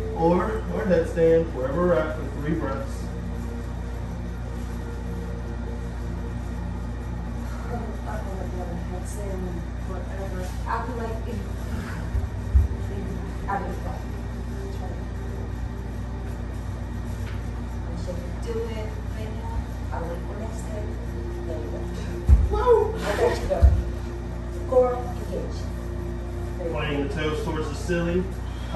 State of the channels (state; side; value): identical; both; correlation 1.00